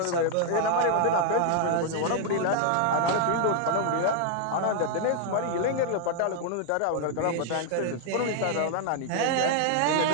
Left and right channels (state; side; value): different; both; correlation 0.00